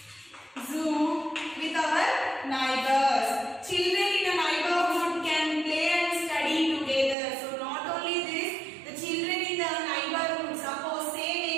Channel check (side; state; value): left; drops out; at 7.2 s